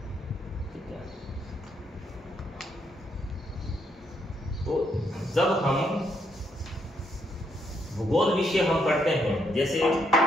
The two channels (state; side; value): normal; both; correlation 0.75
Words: ठीक है, तो जब हम भूगोल विषय हम पढ़ते हैं, जैसे